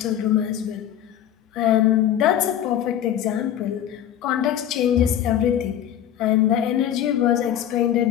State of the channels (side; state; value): right; quieter; 10.7 dB